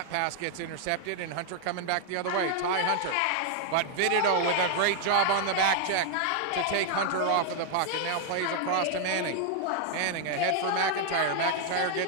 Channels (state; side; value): different; both; correlation 0.00